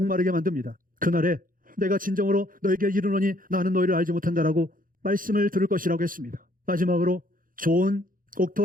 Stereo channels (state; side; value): late; left; 0.40 ms